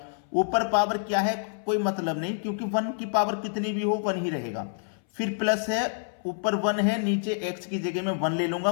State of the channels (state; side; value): silent; right; 60 dB below the other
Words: ऊपर पावर क्या है कोई मतलब नहीं, क्योंकि 1 की पावर कितनी भी हो 1 ही रहेगा। फिर प्लस है, ऊपर 1 है, नीचे x की जगह में 1 ले लूंगा।